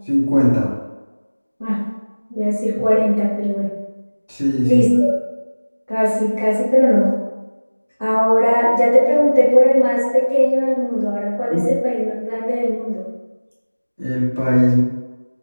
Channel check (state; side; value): inverted; both; correlation -1.00